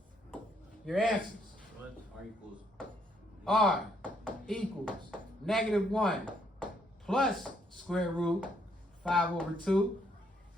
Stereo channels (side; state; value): both; normal; correlation 0.71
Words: your answers. R equals. R equals negative 1 plus square root 5 over 2